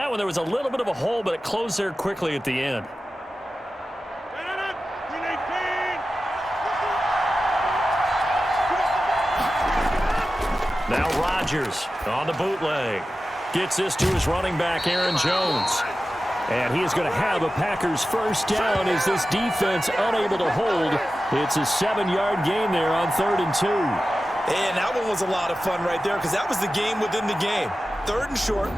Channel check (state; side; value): normal; both; correlation 0.94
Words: one, there was a little bit of a hole, but it closed there quickly at the end. Now Rodgers on the bootleg. Gets this to his running back, Aaron Jones. And he is going to have a Packers first down as this defense unable to hold. It's a 7-yard gain there on 3rd and 2. And that one was a lot of fun right there because that was the game within the game. 3rd and